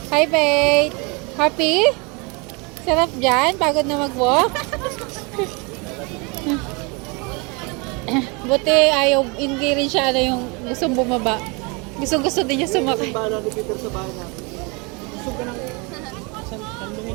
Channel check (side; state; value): left; quieter; 29.5 dB